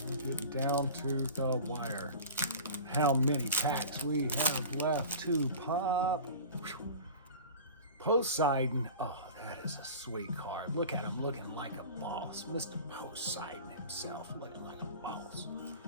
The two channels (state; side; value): inverted; both; correlation -0.36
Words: I'm getting down to the wire. How many packs we have left to pop? Poseidon. Oh, that is a sweet card. Look at him looking like a boss. Mr. Poseidon himself looking like a boss.